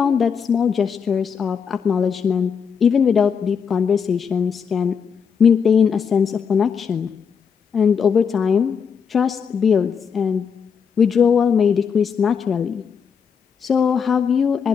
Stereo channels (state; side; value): quieter; right; 6.6 dB